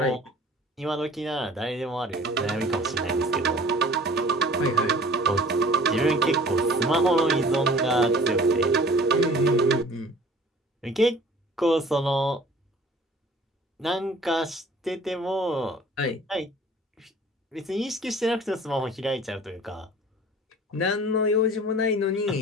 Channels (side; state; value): both; normal; correlation 0.48